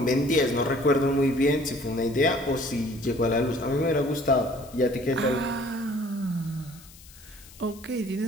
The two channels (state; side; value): noise; left; hiss, 22 dB below the sound